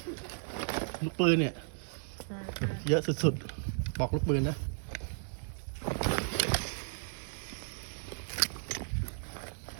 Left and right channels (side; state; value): left; silent; digital silence